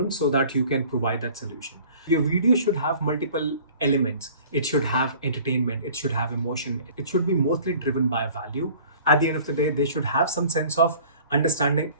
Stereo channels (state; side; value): inverted; both; correlation -0.48